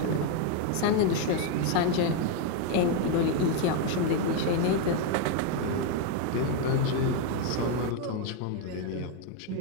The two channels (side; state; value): both; different; correlation 0.01